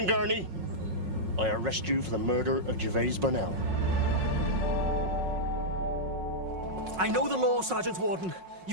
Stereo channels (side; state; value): left; late; 5.5 ms